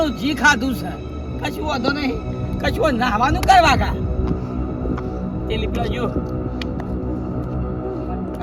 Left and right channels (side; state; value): both; identical; correlation 1.00